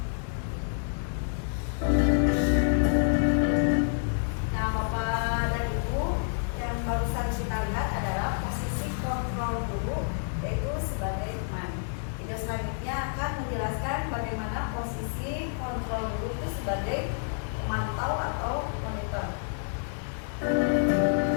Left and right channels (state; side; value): silent; right; digital silence